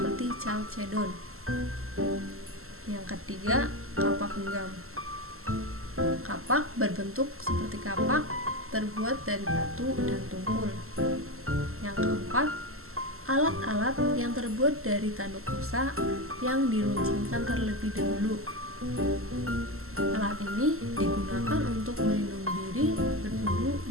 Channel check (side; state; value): left; late; 0.62 ms